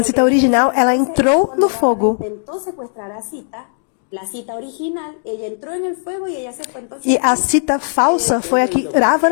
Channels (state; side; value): silent; right; digital silence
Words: Sita original, ela entrou no fogo. Intentó secuestrar a Sita, la Sita original, ella entró en el fuego y ella se fue entonces. E a Sita falsa foi a que